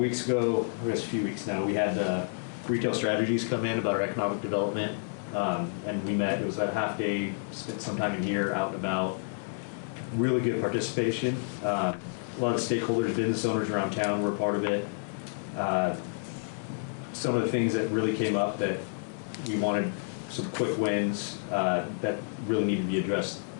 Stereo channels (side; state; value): right; silent; digital silence